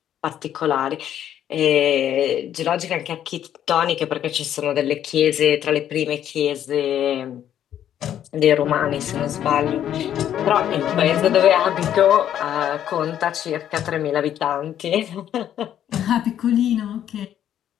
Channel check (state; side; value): quieter; right; 10.5 dB